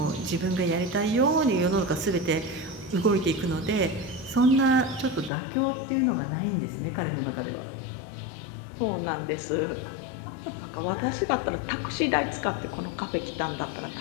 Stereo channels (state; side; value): drops out; right; at 5.3 s